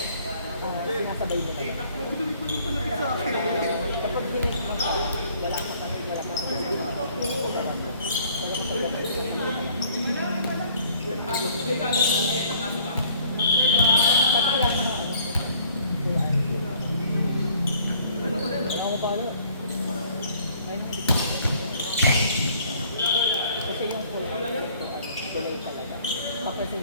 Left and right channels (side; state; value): both; inverted; correlation -0.58